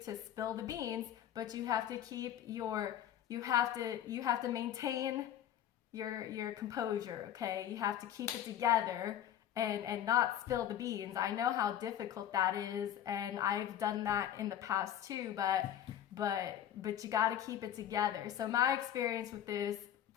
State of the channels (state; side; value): quieter; right; 10.8 dB